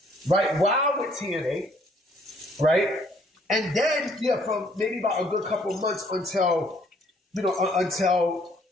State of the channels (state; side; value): normal; both; correlation 0.63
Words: right, while with TNA, right? And then, from maybe about a good couple of months until his